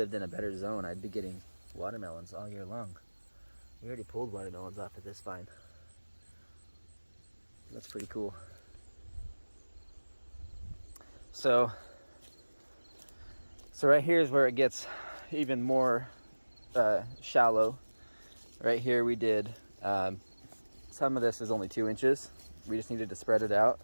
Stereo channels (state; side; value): inverted; both; correlation -1.00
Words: in a better zone, I'd be getting watermelons all year long. We already pulled watermelons off of this vine. That's pretty cool. So right here is where it gets even more shallow. Right here we did, some of this is only 2 inches. We just needed to spread it out